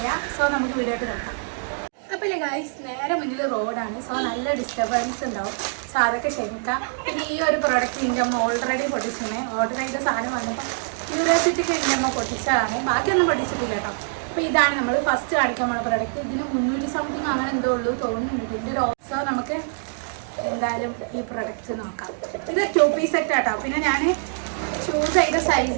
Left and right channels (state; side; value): silent; left; digital silence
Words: സോ നമുക്ക് വീഡിയോ ആയിട്ട് നോക്കാം. അപ്പോൾ ഗായ്സ്, നേരെ മുന്നിൽ റോഡാണ്. സോ നല്ല ഡിസ്റ്റർബൻസ് ഉണ്ടാവും. സോ അതൊക്കെ ക്ഷമിക്കാം. പിന്നെ ഈ ഒരു പ്രോഡക്റ്റ് എൻ്റെ അമ്മ ഓൾറെഡി പൊട്ടിച്ചിരുന്നേ. ഓർഡർ ചെയ്ത സാധനം വന്നപ്പോൾ ക്യൂരിയോസിറ്റിക്ക് എൻ്റെ അമ്മ പൊട്ടിച്ചതാണ്. ബാക്കിയൊന്നും പൊട്ടിച്ചിട്ടില്ല കേട്ടോ. അപ്പോൾ ഇതാണ് നമ്മൾ ഫസ്റ്റ് കാണിക്കാൻ പോകുന്ന പ്രോഡക്റ്റ്. ഇതിന് 300 സംതിങ് അങ്ങനെ എന്തോ ഉള്ളൂ തോന്നുന്നുണ്ട്. ഇതിൻ്റെ ഒരു സോ നമുക്ക് എന്തായാലും ഈ പ്രൊഡക്റ്റ് നോക്കാം. ഇത് 2 പീസ് സെറ്റ് ആട്ടോ. പിന്നെ ഞാൻ ചൂസ് ചെയ്ത സൈസ്